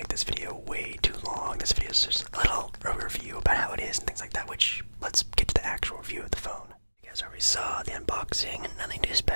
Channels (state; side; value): inverted; both; correlation -1.00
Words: this video way too long. This video is just a little review about how it is and things like that, which, let's get to the actual review of the phone. You guys already saw the unboxing, nothing too